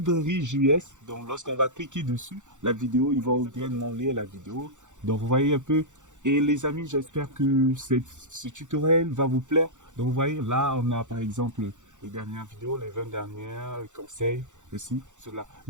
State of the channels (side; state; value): left; late; 0.85 ms